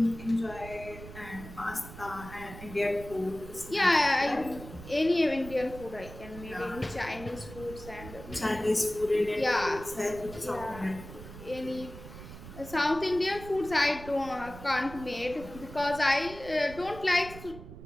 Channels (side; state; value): right; noise; rumble, 14 dB below the sound